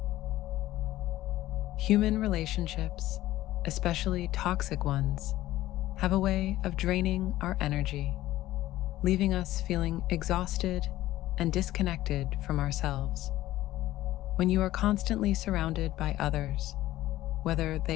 Human relationships, especially toxic ones, have a way of draining our energy, leaving us feeling exhausted and disconnected from ourselves. When you are constantly surrounded by others, whether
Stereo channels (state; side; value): quieter; right; 15.4 dB